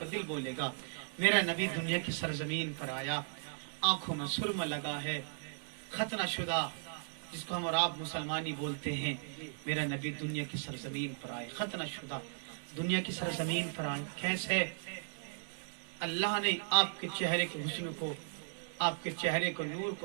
دل بولے گا میرا نبی دنیا کی سرزمین پر آیا، آنکھوں میں سرما لگا ہے، ختنہ شدہ جس کو ہم اور آپ مسلمانی بولتے ہیں، میرا نبی دنیا کی سرزمین پر آئے، ختنہ شدہ دنیا کی سرزمین پر آئے۔ کیسے؟ اللہ نے آپ کے چہرے کے حسن کو، آپ کے چہرے کو، نور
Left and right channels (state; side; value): silent; left; digital silence